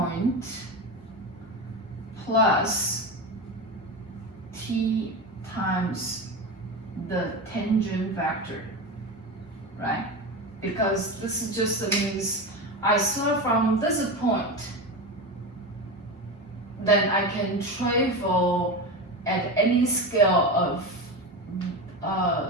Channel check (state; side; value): normal; both; correlation 0.22